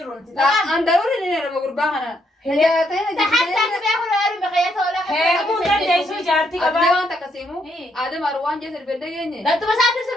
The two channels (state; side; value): normal; both; correlation 0.75